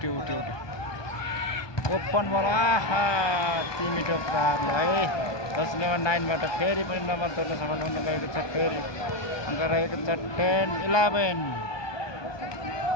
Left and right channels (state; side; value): late; right; 1.2 ms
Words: ओपन बल आहा 3 मिटर प्रार ल है 10 नम्बर 9 बाट फेरि पनि नम्बर तोड्न सफल हुन गएको छ फेरि अङ्क रहेको छ 10-11